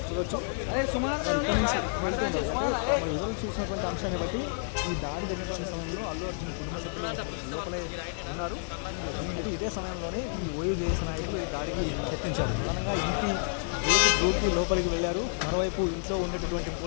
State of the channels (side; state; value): right; silent; 56 dB below the other